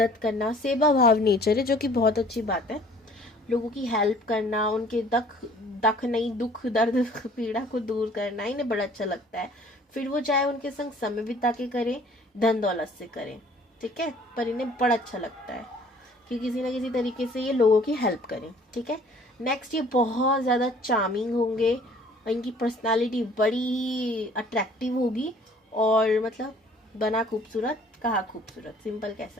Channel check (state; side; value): normal; both; correlation 0.54